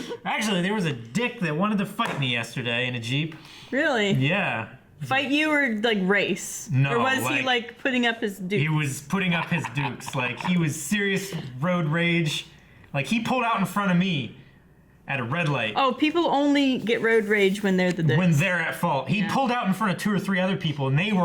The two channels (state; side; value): identical; both; correlation 1.00